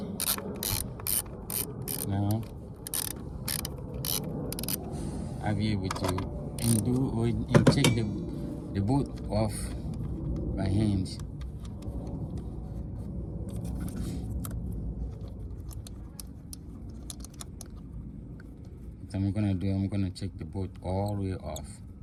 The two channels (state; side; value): identical; both; correlation 1.00